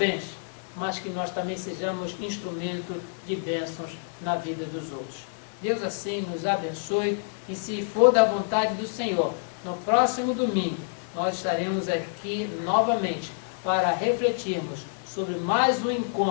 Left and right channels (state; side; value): silent; right; digital silence